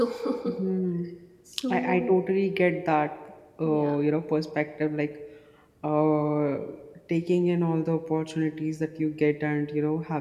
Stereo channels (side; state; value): both; identical; correlation 1.00